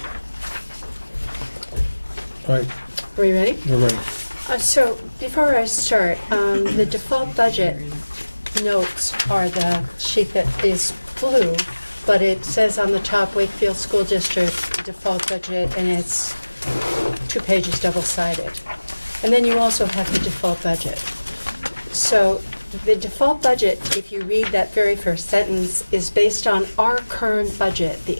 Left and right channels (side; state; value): both; inverted; correlation -1.00